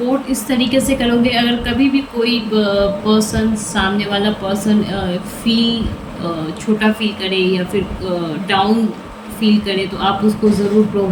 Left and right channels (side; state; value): both; identical; correlation 1.00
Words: इस तरीके से करोगे, अगर कभी भी कोई पर्सन, सामने वाला पर्सन छोटा फील करे या फिर डाउन फील करे, तो आप उसको ज़रूर